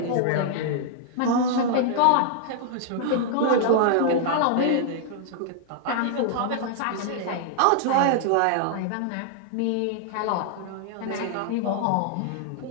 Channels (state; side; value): different; both; correlation -0.01